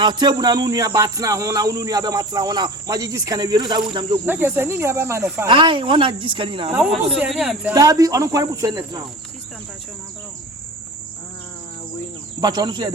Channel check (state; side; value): normal; both; correlation 0.37